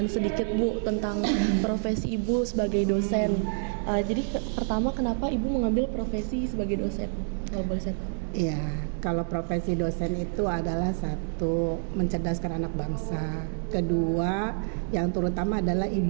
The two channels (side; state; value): left; silent; digital silence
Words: sedikit Bu tentang profesi Ibu sebagai dosen. Jadi pertama kenapa Ibu mengambil profesi sebagai dosen? Kalau boleh saya tahu. Iya, kalau profesi dosen itu adalah satu, mencerdaskan anak bangsa. Kedua, yang terutama adalah